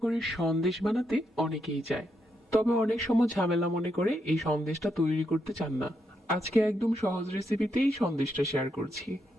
সন্দেশ বানাতে অনেকেই চায়, তবে অনেক সময় ঝামেলা মনে করে এই সন্দেশটা তৈরি করতে চান না। আজকে একদম সহজ রেসিপিতেই সন্দেশটা শেয়ার করছি।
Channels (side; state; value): both; normal; correlation 0.80